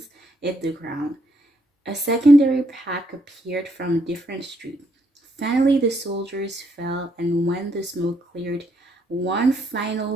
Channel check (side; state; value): both; normal; correlation 0.73